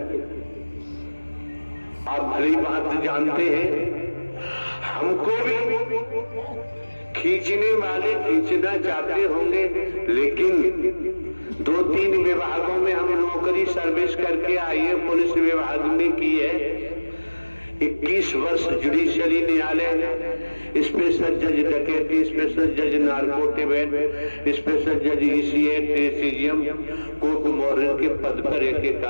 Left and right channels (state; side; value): inverted; both; correlation -1.00